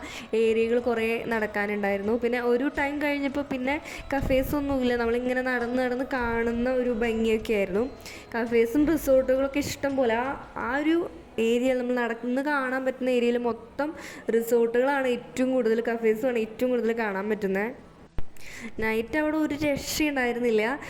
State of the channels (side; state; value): both; identical; correlation 1.00